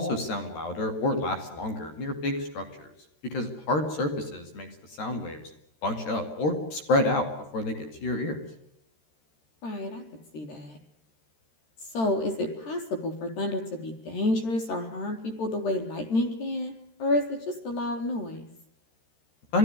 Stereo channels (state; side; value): late; right; 13 ms